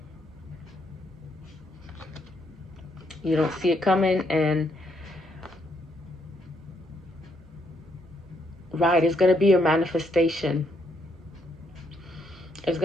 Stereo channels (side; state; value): both; normal; correlation 0.74